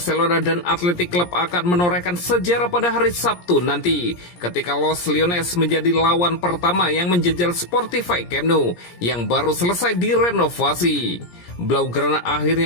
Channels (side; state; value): right; late; 17 ms